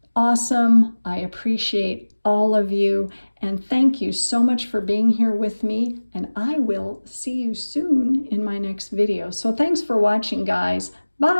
awesome. I appreciate all of you. And thank you so much for being here with me. And I will see you soon in my next video. So thanks for watching, guys.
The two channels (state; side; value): inverted; both; correlation -1.00